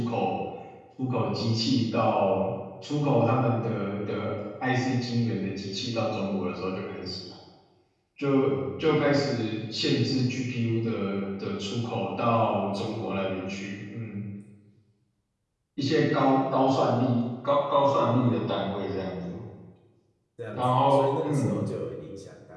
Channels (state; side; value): identical; both; correlation 1.00